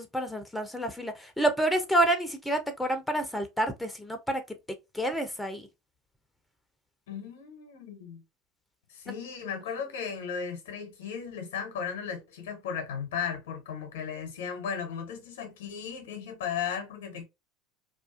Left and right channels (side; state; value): both; normal; correlation 0.45